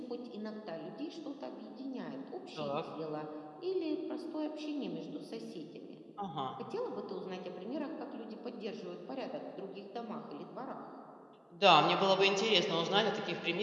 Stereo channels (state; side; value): identical; both; correlation 1.00